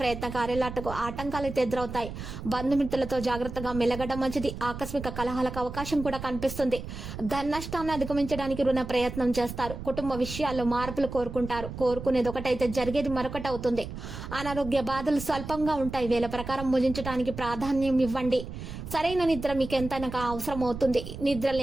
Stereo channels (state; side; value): noise; right; rumble, 9 dB below the sound